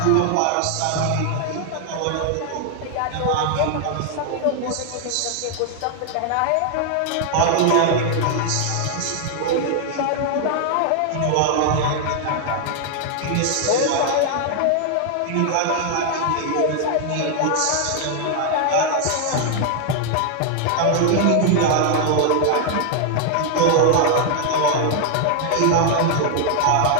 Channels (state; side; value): different; both; correlation 0.00